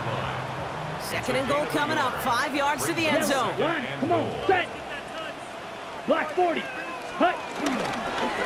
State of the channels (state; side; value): identical; both; correlation 1.00